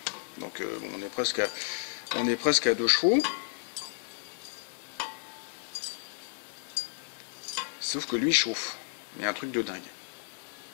Donc bon, on est presque à 2 chevaux. Sauf que lui chauffe. Il y a un truc de dingue.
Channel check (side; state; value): right; silent; 56 dB below the other